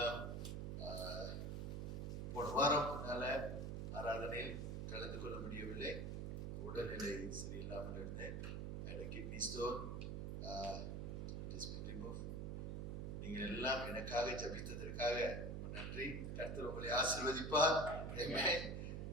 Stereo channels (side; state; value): right; noise; hum, 3 dB below the sound